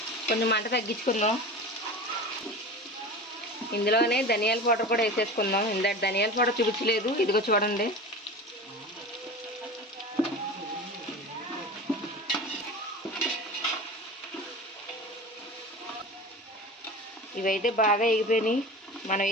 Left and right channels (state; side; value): normal; both; correlation 0.32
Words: కొంచెం మంట తగ్గించుకుందాం. ఇందులోనే ధనియాల పౌడర్ కూడా వేసేసుకుందాం. ఇందాక ధనియాల పౌడర్ చూపించలేదు, ఇదిగో చూడండి. ఇవైతే బాగా ఎగిపోయినాయి. మనం